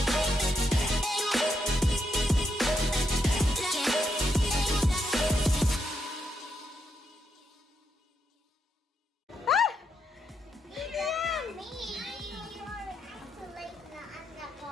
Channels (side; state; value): both; normal; correlation 0.81